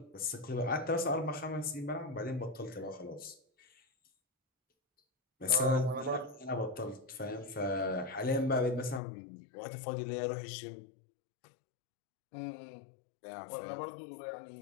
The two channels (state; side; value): drops out; right; at 9.0 s